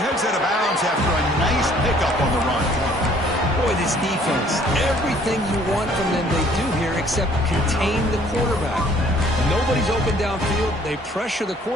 out of bounds after a nice pickup on the run. Boy, this defense, everything you want from them they do here except contain the quarterback. Nobody's open downfield. They pressure the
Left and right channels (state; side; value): normal; both; correlation 0.59